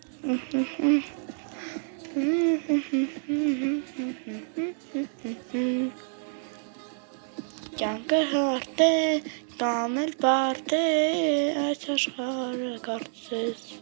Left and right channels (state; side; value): silent; left; digital silence